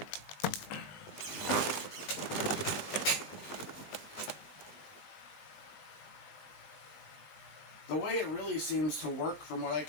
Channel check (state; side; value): late; right; 20 ms